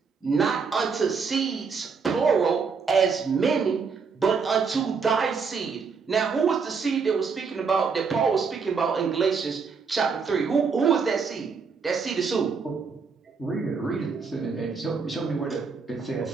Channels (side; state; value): left; quieter; 5.4 dB